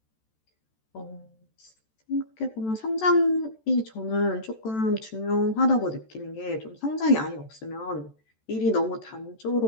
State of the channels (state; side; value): late; right; 14 ms